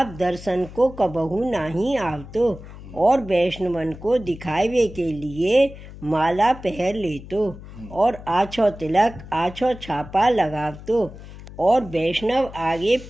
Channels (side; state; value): left; noise; hum, 15 dB below the sound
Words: दर्शन को कबहू नहीं आवतो और वैष्णवन को दिखावे के लिए माला पहन लेतो और आछो तिलक आछो छापा लगावतो और वैष्णव आगे